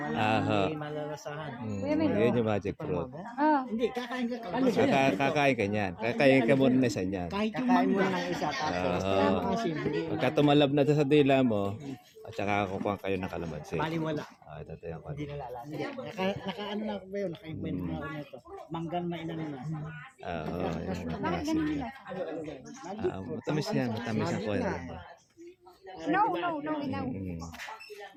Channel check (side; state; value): both; identical; correlation 1.00